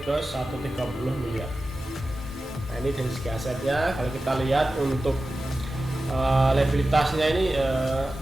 ke 130 miliar. Nah, ini dari segi asetnya. Kalau kita lihat untuk liabilitasnya ini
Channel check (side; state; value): both; normal; correlation 0.94